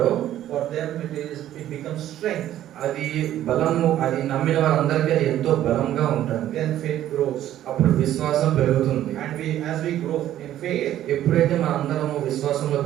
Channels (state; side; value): quieter; left; 12.4 dB